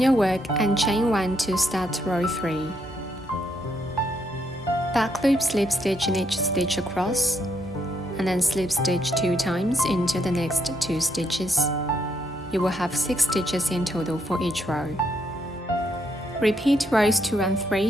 work and chain 1 to start row 3. Back loop slip stitch in each stitch across, and then slip stitch 2 times into the next 2 stitches. You will have 6 stitches in total for each row. Repeat rows 2 and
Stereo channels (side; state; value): both; normal; correlation 0.76